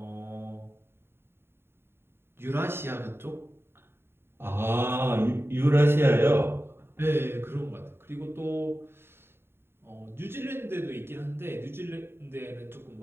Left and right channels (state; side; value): late; left; 0.11 ms